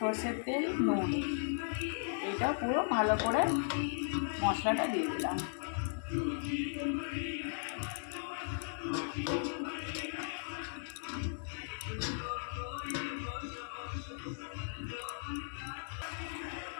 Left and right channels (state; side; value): silent; right; digital silence